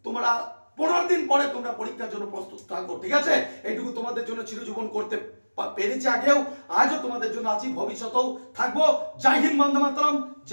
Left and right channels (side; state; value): both; inverted; correlation -1.00